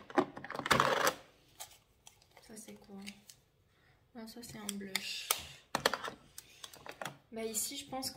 Ça c'est quoi? Ah, ça c'est un blush. Bah ici je pense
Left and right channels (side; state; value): both; identical; correlation 1.00